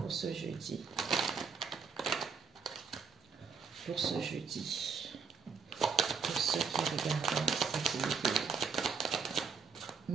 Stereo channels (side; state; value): left; quieter; 5.8 dB